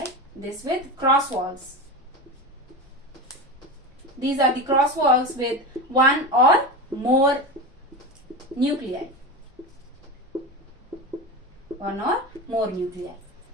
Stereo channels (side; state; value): both; normal; correlation 0.23